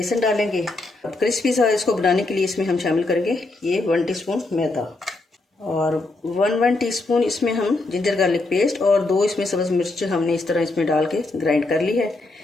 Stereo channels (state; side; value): quieter; right; 3.1 dB